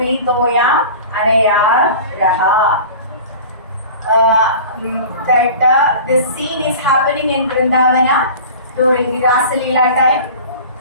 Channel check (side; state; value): both; inverted; correlation -0.38